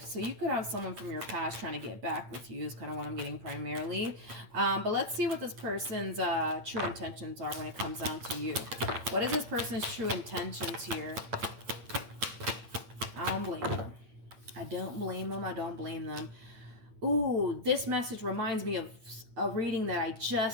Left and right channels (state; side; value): late; left; 8.7 ms